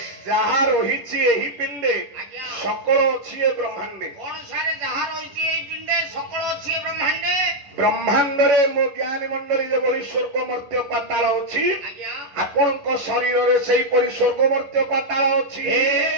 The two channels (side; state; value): left; late; 11 ms